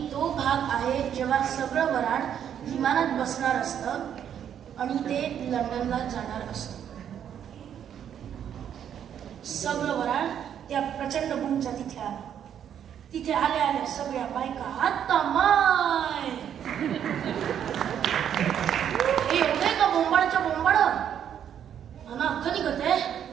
तो भाग आहे जेव्हा सगळं वराड विमानात बसणार असतं आणि ते लंडनला जाणार असतं. सगळं वराड त्या प्रचंड बुमच्या तिथे आलं. तिथे आल्या आल्या सगळ्या बायका आता माय हे एवढे का बोंबाडच्या बोंबाड मला अख्ख निघते.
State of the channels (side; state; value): left; quieter; 9.2 dB